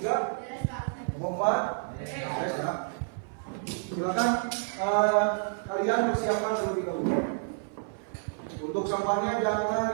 Kelompok 4? Beres ya. Silakan kalian persiapkan terlebih dahulu. Untuk sampahnya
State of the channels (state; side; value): silent; left; 56 dB below the other